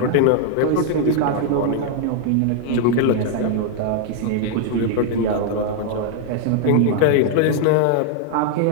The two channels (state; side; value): different; both; correlation 0.00